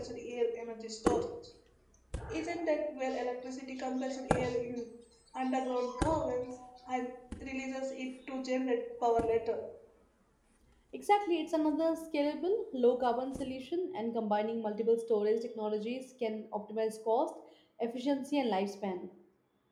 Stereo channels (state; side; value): identical; both; correlation 1.00